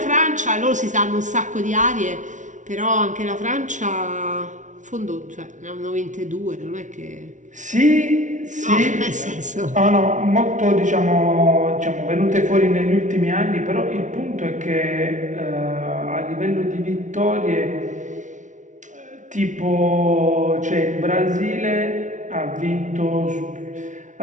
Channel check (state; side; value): late; left; 0.37 ms